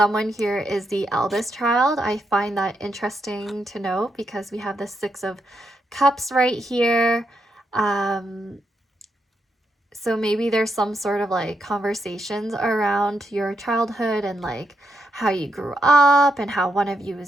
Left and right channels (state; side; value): normal; both; correlation 0.82